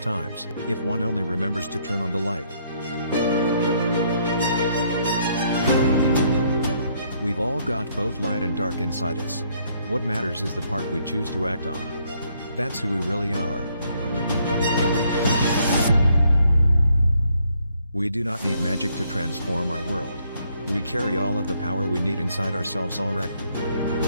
if one only remembers to turn on the light. We've all got both light and dark inside us. What matters is the part we choose to act on. That's who we really are. We do not need magic to transform our world. We carry all of the power we need inside ourselves already.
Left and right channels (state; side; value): inverted; both; correlation -0.69